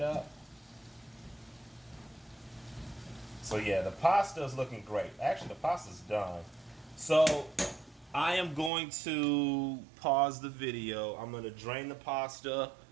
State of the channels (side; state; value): left; drops out; at 8.7 s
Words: up. So yeah, the pasta is looking great. Actually, the pasta's done. So I am going to pause the video. I'm going to drain the pasta,